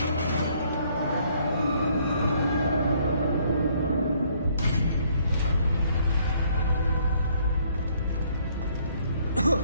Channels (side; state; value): both; inverted; correlation -0.65